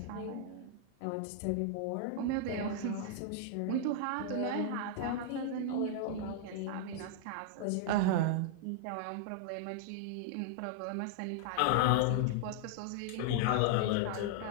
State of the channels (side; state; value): both; different; correlation -0.01